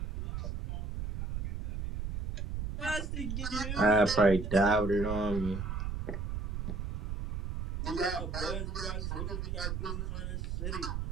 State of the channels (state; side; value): noise; right; rumble, 3 dB below the sound